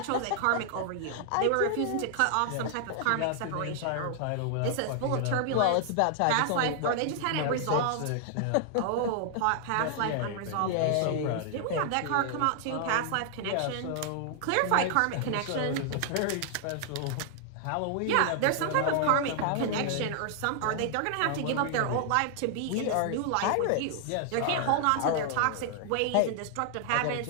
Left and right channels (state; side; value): different; both; correlation 0.00